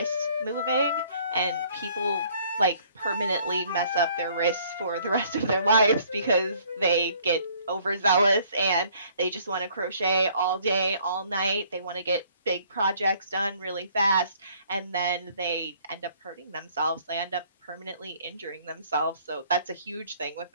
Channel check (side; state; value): both; inverted; correlation -0.60